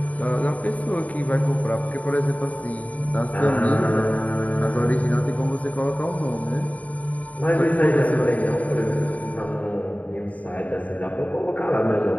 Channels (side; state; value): right; late; 0.071 ms